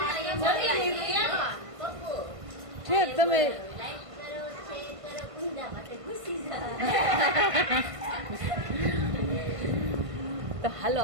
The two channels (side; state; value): left; late; 1.5 ms